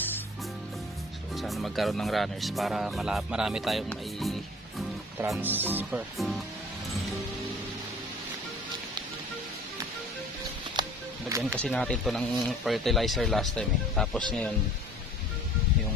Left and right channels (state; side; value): normal; both; correlation 0.48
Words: So sana magkaroon ng runners para marami tayong may transfer. Lagyan kasi natin to ng fertilizer last time eh. Tapos ngayon